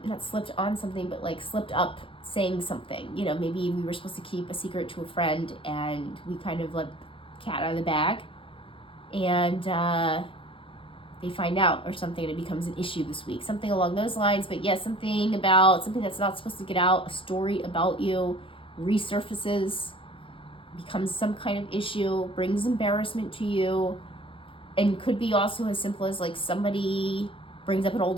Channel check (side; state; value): right; late; 0.25 ms